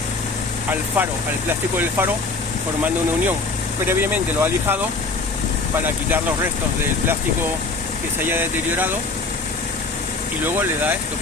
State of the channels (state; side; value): quieter; right; 3.7 dB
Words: al faro, al plástico del faro, formando una unión. Previamente lo ha lijado para quitar los restos del plástico que se haya deteriorado y luego le da esto